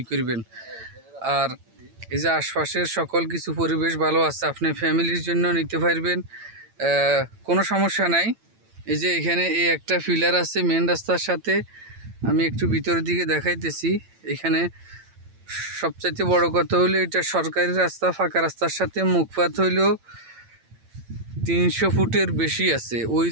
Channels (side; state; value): left; late; 8.9 ms